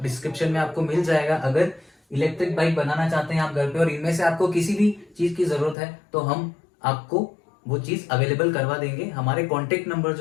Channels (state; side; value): drops out; right; at 5.8 s